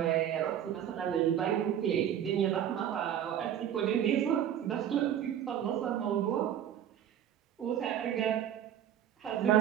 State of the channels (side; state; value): left; quieter; 10.1 dB